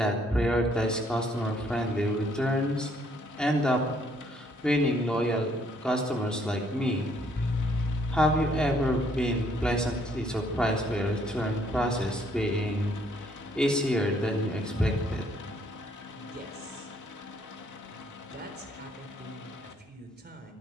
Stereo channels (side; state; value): both; normal; correlation 0.67